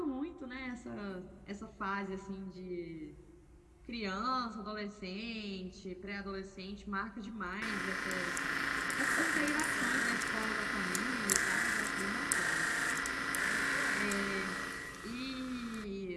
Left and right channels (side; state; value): both; identical; correlation 1.00